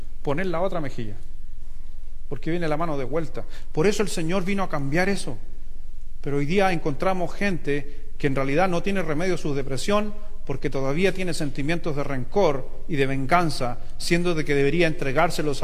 poner la otra mejilla. Porque viene la mano de vuelta. Por eso el Señor vino a cambiar eso. Pero hoy día encontramos gente que en realidad no tiene remedio a su depresión porque todavía tiene sentimientos de rencor y de venganza, siendo de que debería entregárselos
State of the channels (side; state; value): both; identical; correlation 1.00